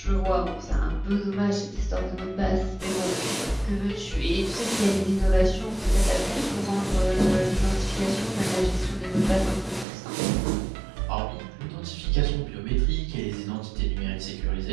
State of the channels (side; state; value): left; drops out; at 9.9 s